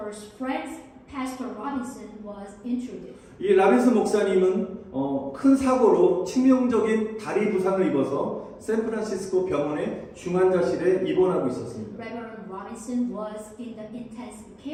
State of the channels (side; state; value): both; identical; correlation 1.00